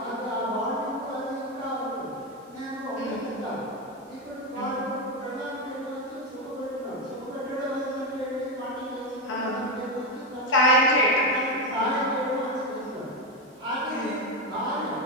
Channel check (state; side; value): normal; both; correlation 0.10